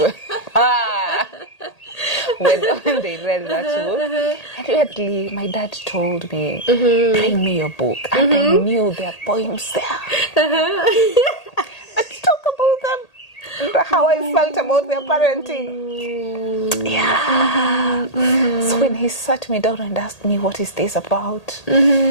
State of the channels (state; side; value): late; right; 1.8 ms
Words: when they read that book. And weirdly, my dad told me, bring me your book. And I knew there are poems there. Let's talk about them. How I felt about their parenting. Yeah. So when he sat me down and asked me, what is this about?